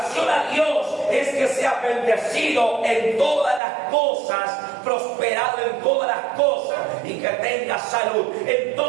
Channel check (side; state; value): left; drops out; at 3.6 s